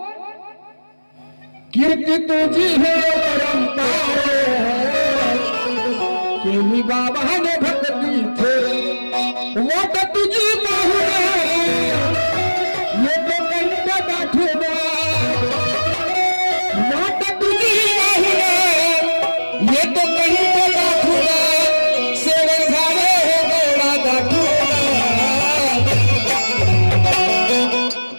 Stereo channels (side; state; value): both; inverted; correlation -1.00